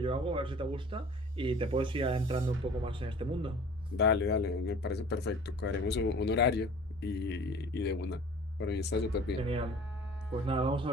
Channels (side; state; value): both; normal; correlation 0.45